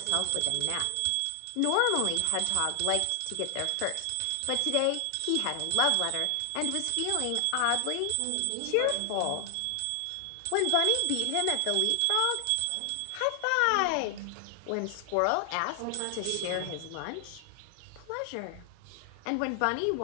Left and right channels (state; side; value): different; both; correlation 0.00